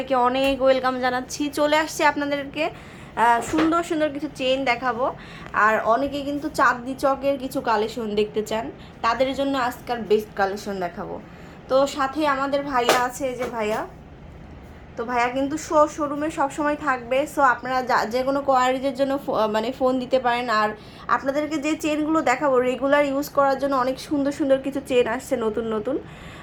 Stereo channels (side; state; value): both; identical; correlation 1.00